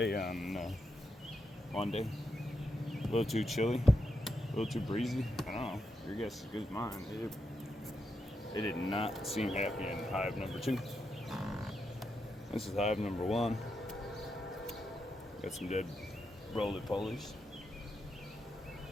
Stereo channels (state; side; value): normal; both; correlation 0.84